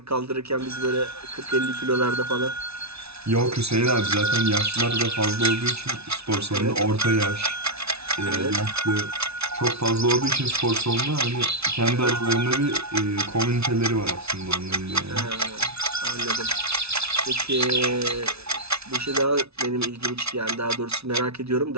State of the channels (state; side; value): late; left; 0.79 ms